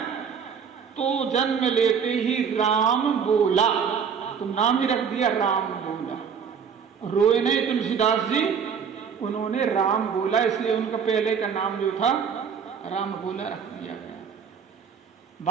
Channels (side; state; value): left; quieter; 6.9 dB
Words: तो जन्म लेते ही राम बोला, तो नाम ही रख दिया राम बोला। रोए नहीं तुलसीदास जी, उन्होंने राम बोला, इसलिए उनका पहले का नाम जो था राम बोला रख दिया गया।